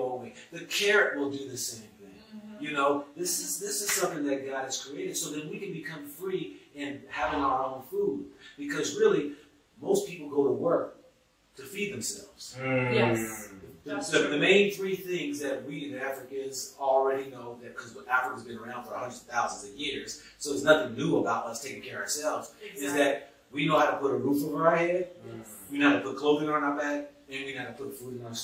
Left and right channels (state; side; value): identical; both; correlation 1.00